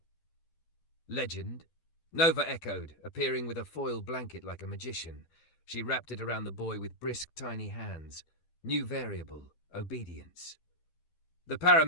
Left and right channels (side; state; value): right; late; 12 ms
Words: "Legend?" Nova echoed, appearing with a foil blanket like a magician. She wrapped it around the boy with brisk, tiny hands. New variable, obedience. The